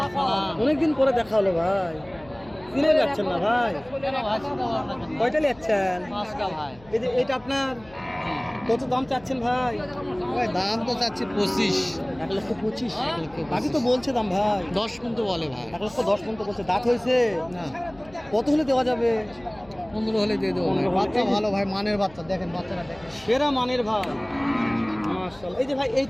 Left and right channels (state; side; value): noise; left; hum, 24 dB below the sound